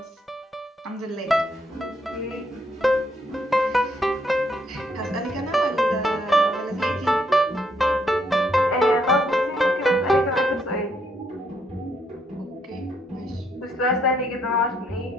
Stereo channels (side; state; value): both; normal; correlation 0.72